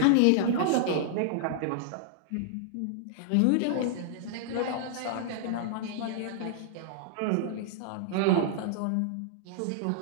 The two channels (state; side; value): different; both; correlation -0.01